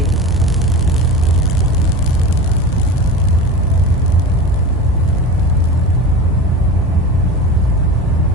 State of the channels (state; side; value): normal; both; correlation 0.30